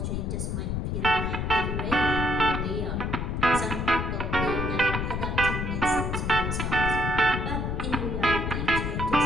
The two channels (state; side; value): noise; left; rumble, 1 dB below the sound